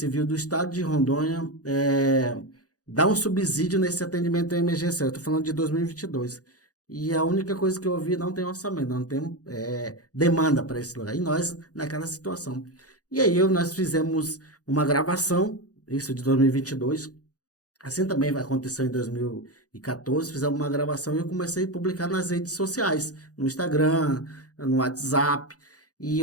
do Estado de Rondônia dá um subsídio nesse atendimento emergencial. Eu estou falando de 2022. E a única coisa que eu ouvi, não tem orçamento, não tem demanda para esse lugar. E nós, naquela situação. E aí nós fizemos uma gravação, isso de 2022, assim também vai acontecer em 2014, fizemos uma gravação e eu comecei a publicar nas redes sociais, no Instagram, no WhatsApp, e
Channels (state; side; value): late; right; 0.67 ms